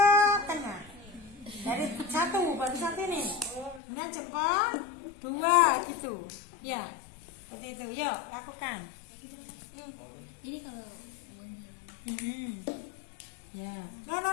tengah. Dari satu, baru satu ini. Kemudian jempol, dua gitu. Ya, seperti itu. Yuk, lakukan. Ini kalau Ya. No.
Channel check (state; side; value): drops out; right; at 3.8 s